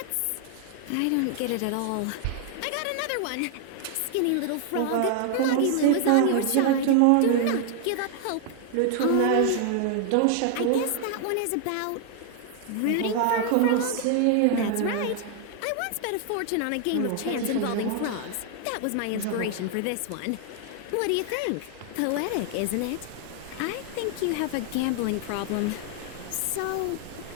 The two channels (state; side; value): different; both; correlation 0.00